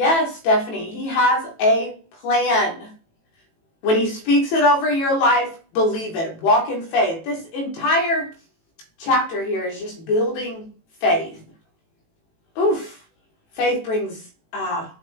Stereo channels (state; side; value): late; right; 18 ms